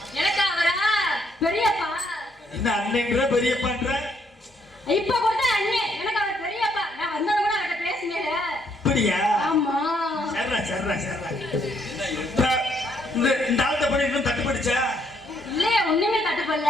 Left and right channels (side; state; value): both; normal; correlation 0.71